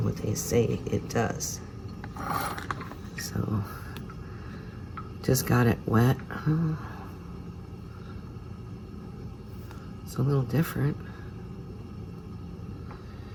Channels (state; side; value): identical; both; correlation 1.00